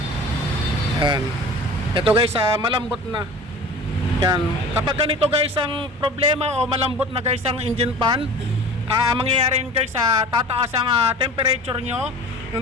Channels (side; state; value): both; normal; correlation 0.40